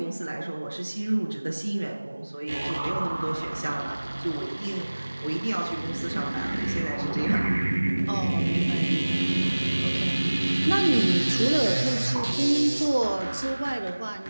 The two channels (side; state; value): both; inverted; correlation -1.00